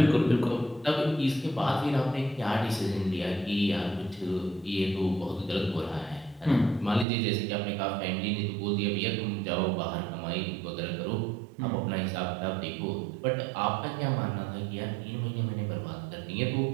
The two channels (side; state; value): left; drops out; at 7.1 s